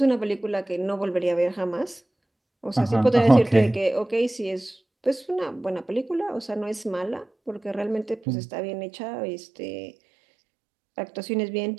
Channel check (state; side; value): drops out; left; at 8.2 s